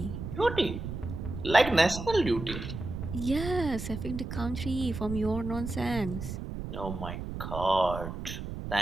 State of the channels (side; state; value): right; noise; rumble, 7 dB below the sound